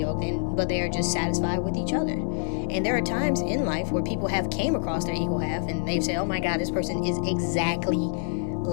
but they are just satisfied with each other. And there are times in life where people have came across their equal half and they've said, oh my God, this person is exactly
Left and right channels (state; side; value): silent; right; digital silence